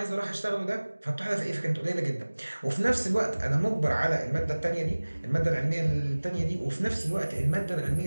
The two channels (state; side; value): inverted; both; correlation -1.00